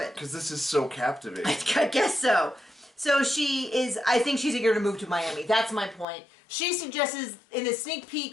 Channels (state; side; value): drops out; right; at 6.1 s